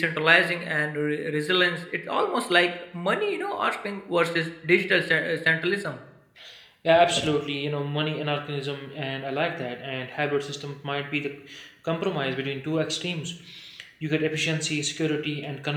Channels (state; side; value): identical; both; correlation 1.00